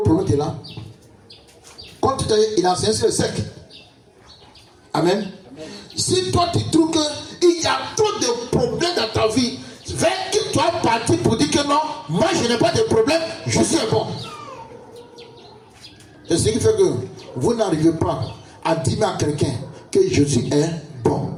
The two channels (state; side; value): identical; both; correlation 1.00